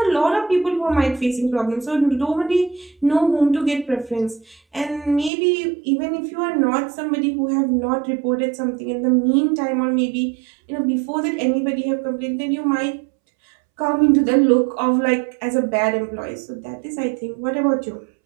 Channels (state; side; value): drops out; left; at 5.3 s